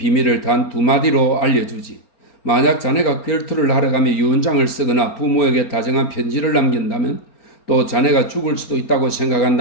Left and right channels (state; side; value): late; right; 4.3 ms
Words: 단 두 마디로 알려주지. 만약 자네가 결투를 하러 가며 유언장을 쓰거나 부모에게 다정한 편지를 남긴다면 또 자네가 죽을 수도 있다고